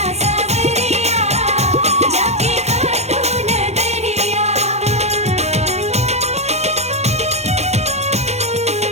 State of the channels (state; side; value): late; left; 0.32 ms